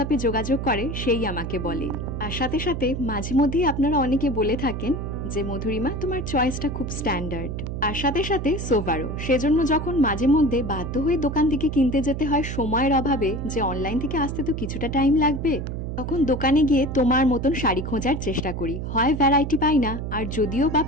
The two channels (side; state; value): right; noise; hum, 5 dB below the sound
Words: যোগাযোগ করে সেই আমাকে বলে। আর সাথে সাথে মাঝে মধ্যেই আপনারা অনেকে বলে থাকেন যে মধুরিমা তোমার চয়েসটা খুব স্ট্যান্ডার্ড। আর সাথে সাথে সোভারও, সেজন্য যখন মাঝে মধ্যে বাধ্য হয়ে দোকান থেকে কিনতে যেতে হয় সময়ের অভাবে, যে অনলাইন থেকে আসতে তো কিছুটা টাইম লাগবে, তখন দোকানে গিয়ে তোমার মতন শাড়ি খোঁজার চেষ্টা করি। হয় ভ্যারাইটি পাই না, আর যদিও বা